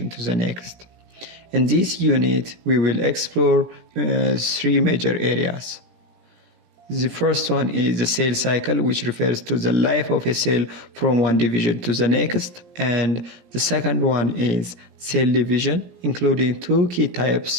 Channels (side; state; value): left; late; 17 ms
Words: to the next. In this unit, we will explore three major areas. The first one is the cell cycle, which refers to the life of a cell from one division to the next. And the second one is cell division, including two key